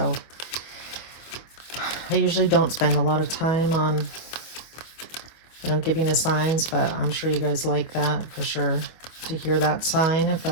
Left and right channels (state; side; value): late; right; 25 ms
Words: I usually don't spend a lot of time on, you know, giving the signs, but I'm sure you guys like that for sure, to hear that sign if